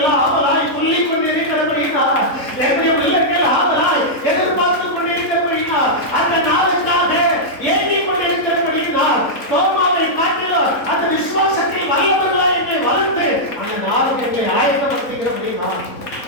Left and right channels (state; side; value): late; right; 3.8 ms